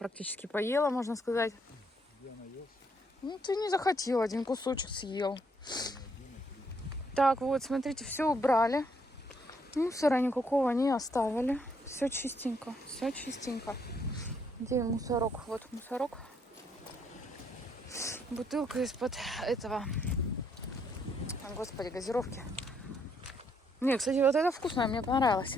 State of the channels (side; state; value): both; normal; correlation 0.72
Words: поела, можно сказать. Я наелся. Ну, ты не захотел, один кусочек съел. Так, вот, смотрите, все убрали. Мусора никакого не оставили. Все чистенько, все чистенько. Где мусорок? Вот мусорок. Бутылка из-под этого, господи, газировки. Не, кстати, вот это вкусное, мне понравилось.